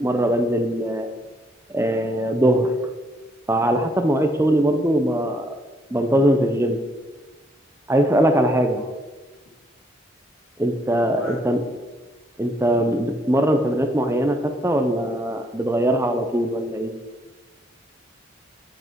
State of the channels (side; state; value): both; normal; correlation 0.70